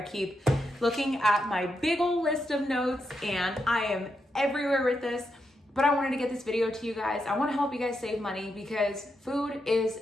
keep looking at my big old list of notes and I am everywhere with this, but I wanted to get this video to you guys. I want to help you guys save money because food is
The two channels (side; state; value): both; normal; correlation 0.83